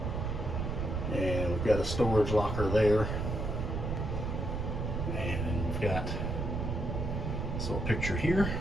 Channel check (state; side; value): noise; right; rumble, 2 dB below the sound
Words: and we've got a storage locker there. And we've got this little picture here.